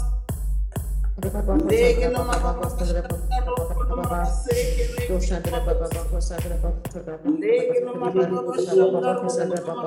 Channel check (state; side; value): identical; both; correlation 1.00